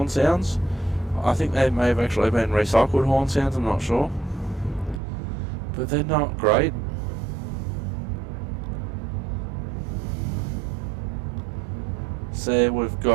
sounds. I think they may have actually been recycled horn sounds, I'm not sure. But they're not great. So we've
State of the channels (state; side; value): drops out; left; at 5.0 s